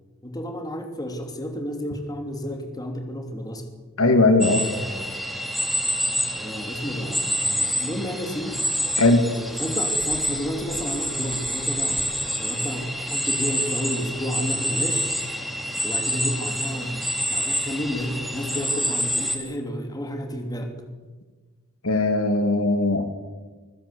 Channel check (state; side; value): normal; both; correlation 0.56